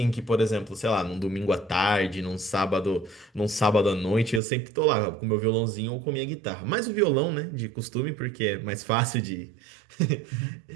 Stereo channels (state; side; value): drops out; left; at 4.4 s